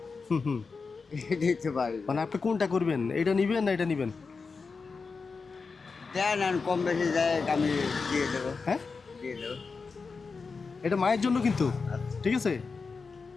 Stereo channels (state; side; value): quieter; right; 4.7 dB